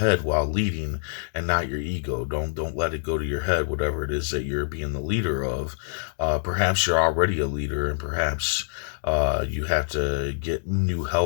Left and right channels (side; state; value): right; silent; digital silence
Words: while leading and not your ego. Don't let it go to your head, whatever it is that you're being the leader of. Perhaps you're already a leader, and perhaps you have to get new